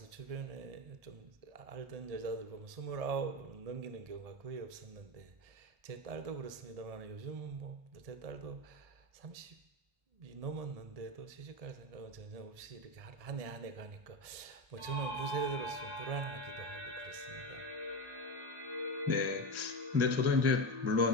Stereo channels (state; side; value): late; left; 1.7 ms